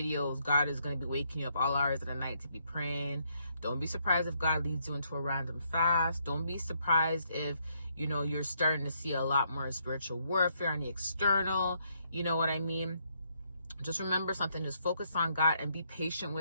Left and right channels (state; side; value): inverted; both; correlation -0.74